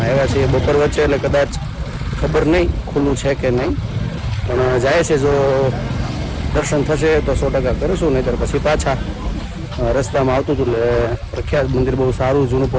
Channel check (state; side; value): identical; both; correlation 1.00